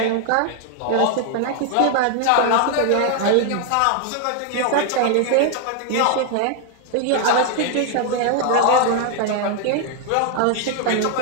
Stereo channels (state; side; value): different; both; correlation 0.00